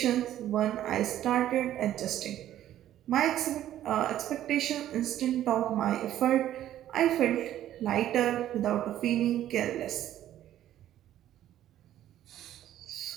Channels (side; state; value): left; quieter; 12.3 dB